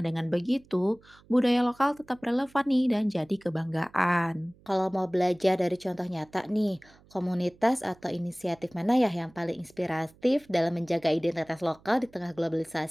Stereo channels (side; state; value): right; noise; hum, 28 dB below the sound